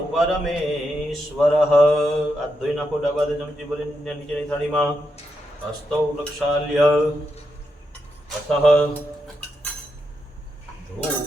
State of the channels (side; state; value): both; normal; correlation 0.84